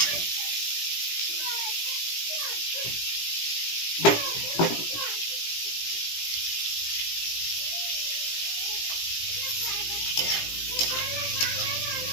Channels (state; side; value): late; right; 17 ms